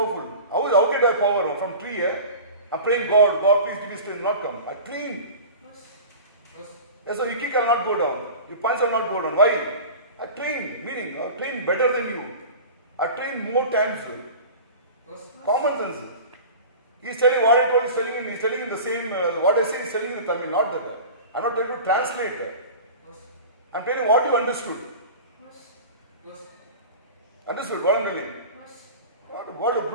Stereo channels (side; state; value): both; inverted; correlation -0.35